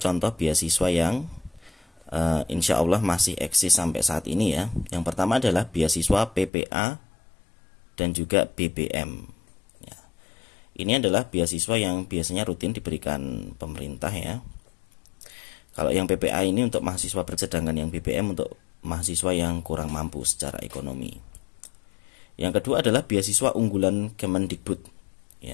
beasiswa yang insya Allah masih eksis sampai saat ini ya. Yang pertama adalah beasiswa PPA dan juga BBM. Ya. Ini adalah beasiswa yang biasanya rutin diberikan pemerintah ya. Kalau yang PPA ini untuk mahasiswa sedangkan yang BBM untuk mahasiswa yang kurang mampu secara ekonomi. Yang kedua adalah beasiswa unggulan Kemendikbud.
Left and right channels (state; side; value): drops out; right; at 6.5 s